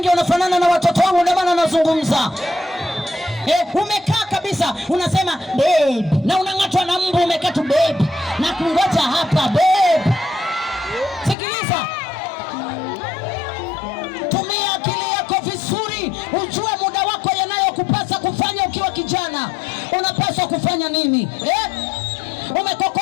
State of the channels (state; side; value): drops out; right; at 11.4 s